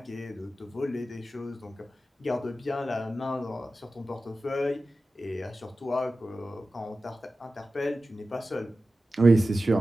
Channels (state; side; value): normal; both; correlation 0.94